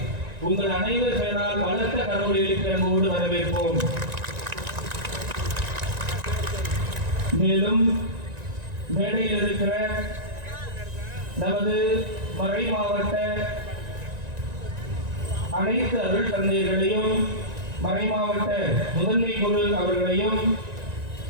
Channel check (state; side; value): late; left; 1.9 ms